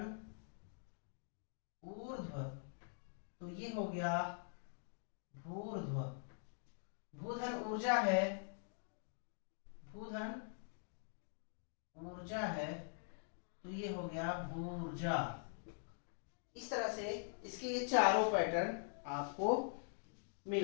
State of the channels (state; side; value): silent; right; digital silence